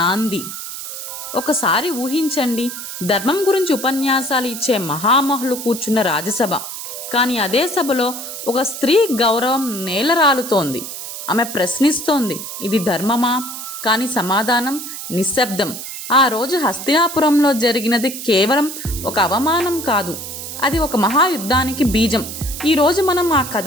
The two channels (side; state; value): right; noise; hiss, 8 dB below the sound